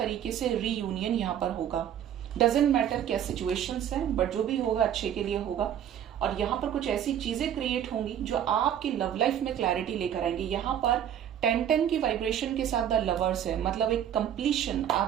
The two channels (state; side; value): quieter; left; 9.9 dB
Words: से रीयूनियन यहाँ पर होगा। डजेंट मैटर क्या सिचुएशंस हैं, बट जो भी होगा अच्छे के लिए होगा। और यहाँ पर कुछ ऐसी चीजें क्रिएट होंगी जो आपकी लव लाइफ में क्लैरिटी लेकर आएंगी। यहाँ पर 10-10 की वाइब्रेशन के साथ द लवर्स है, मतलब एक कंप्लीशन